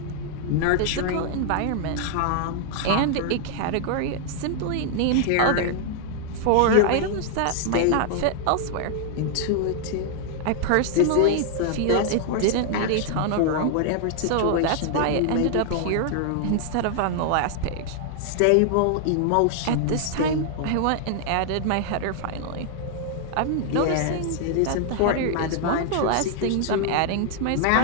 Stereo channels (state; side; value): different; both; correlation 0.00